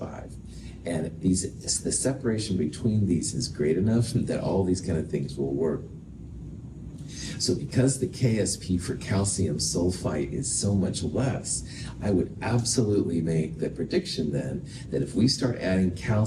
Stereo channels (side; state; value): both; identical; correlation 1.00